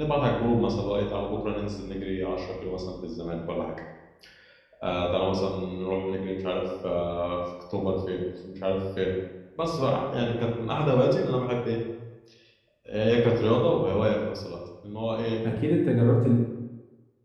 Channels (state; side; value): identical; both; correlation 1.00